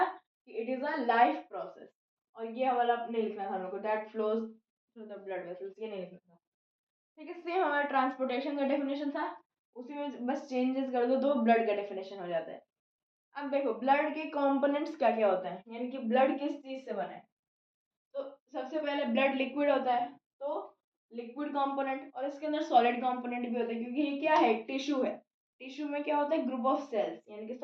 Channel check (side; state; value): both; identical; correlation 1.00